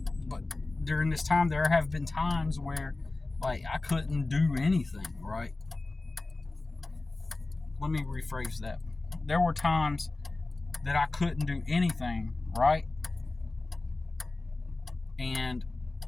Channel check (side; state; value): right; quieter; 3.2 dB